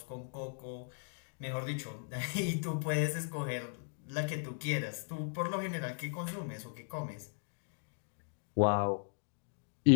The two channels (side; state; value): right; silent; digital silence